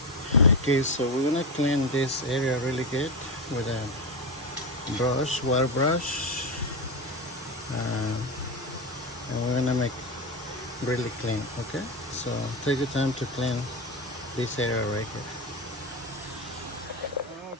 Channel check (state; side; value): normal; both; correlation 0.16